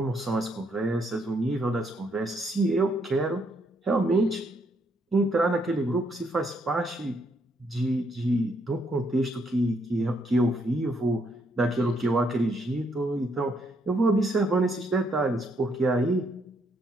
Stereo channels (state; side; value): normal; both; correlation 0.73